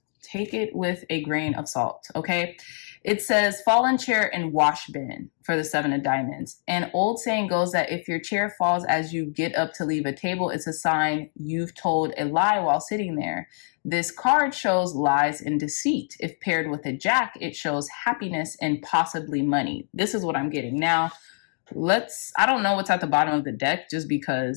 take it with a grain of salt, okay? It says, fallen chair and wash bin for the 7 of diamonds. An old saying goes that if your chair falls as you get up to leave a table, it's a sign you've told a lie while sitting there. This card shows lies and deceit. If paired with a jack, it shows happiness and possibly money. This is what I'm getting. Now, I don't know what's at the bottom of the deck, just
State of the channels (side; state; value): right; silent; digital silence